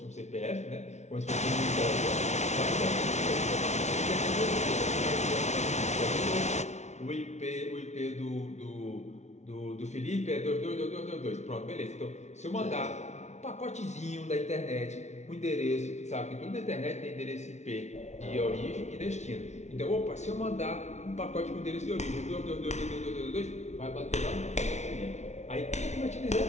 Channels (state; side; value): late; right; 0.32 ms